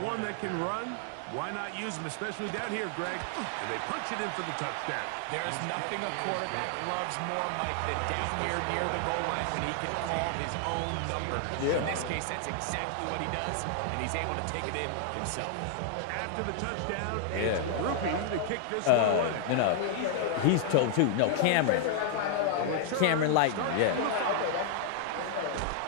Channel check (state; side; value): different; both; correlation 0.00